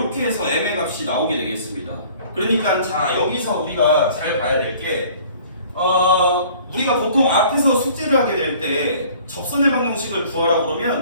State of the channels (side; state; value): both; inverted; correlation -0.52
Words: 해서 m의 값이 나오게 되겠습니다. 그러니까 자 여기서 우리가 잘 봐야 될 게 우리가 보통 앞에서 숙제를 하게 될 때 접선의 방정식을 구하라고